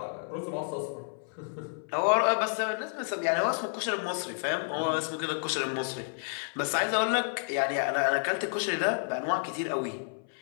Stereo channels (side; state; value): right; silent; 58 dB below the other